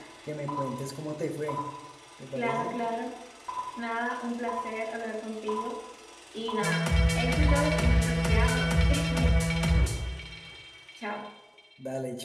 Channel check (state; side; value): identical; both; correlation 1.00